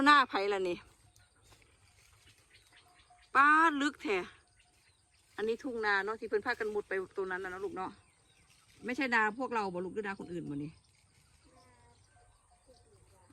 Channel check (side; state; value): both; identical; correlation 1.00